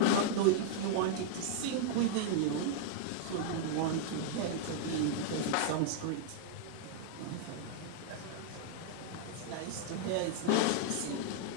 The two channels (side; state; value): both; different; correlation -0.01